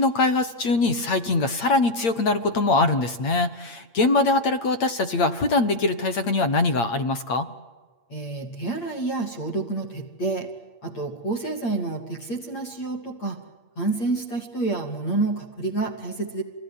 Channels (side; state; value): right; late; 8.7 ms